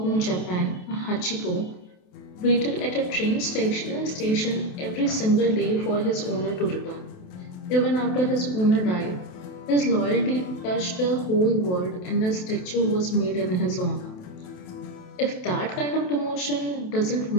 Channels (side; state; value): right; late; 28 ms